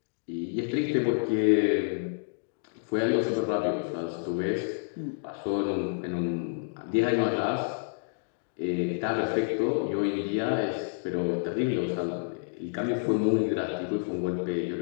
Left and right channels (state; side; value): silent; right; digital silence